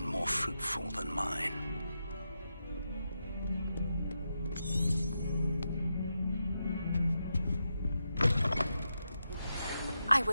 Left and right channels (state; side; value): inverted; both; correlation -0.86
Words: more fruitful than mine. I